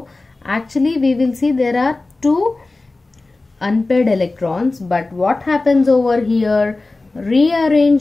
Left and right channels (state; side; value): quieter; right; 3.3 dB